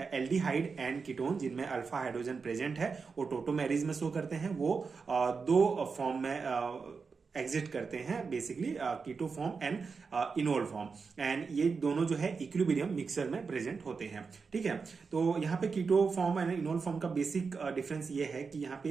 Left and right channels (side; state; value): left; quieter; 5.0 dB